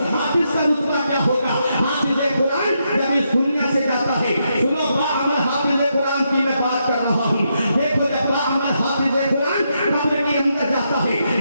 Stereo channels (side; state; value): both; inverted; correlation -0.81